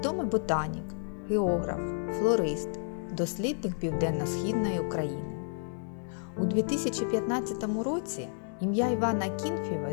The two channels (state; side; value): silent; right; 57 dB below the other